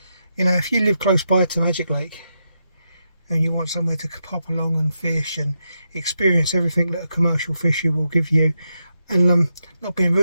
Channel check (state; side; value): inverted; both; correlation -0.85